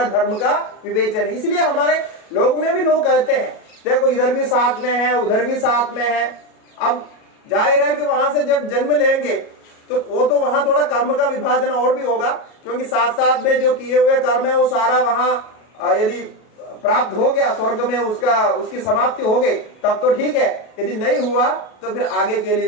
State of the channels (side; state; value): right; late; 38 ms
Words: धर्म का विवेचन है। इसलिए हमारे लोग में भी लोग कहते हैं देखो इधर भी साथ में है, उधर भी साथ में है। अब जाहिर है कि वहां से जब जन्म लेंगे तो वो तो वहां थोड़ा कर्म का विभाजन और भी होगा, क्योंकि साथ साथ में जो किए हुए कर्म है वो सारा वहां यदि प्राप्त हो गया स्वर्ग में, उसकी समाप्ति हो गई तब तो ठीक है। यदि नहीं हुआ तो फिर आगे के